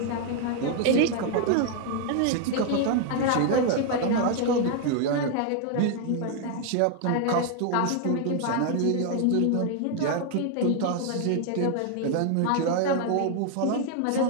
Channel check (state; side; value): different; both; correlation 0.00